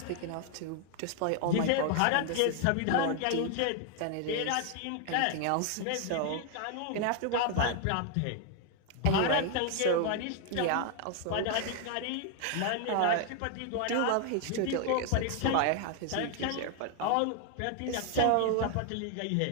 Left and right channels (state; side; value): different; both; correlation 0.00